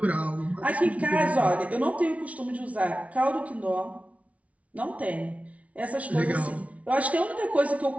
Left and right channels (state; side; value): late; left; 0.066 ms